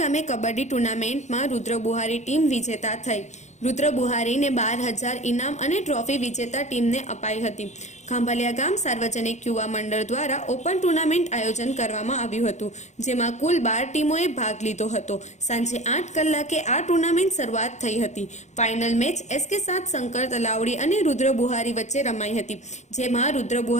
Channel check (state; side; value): late; right; 0.34 ms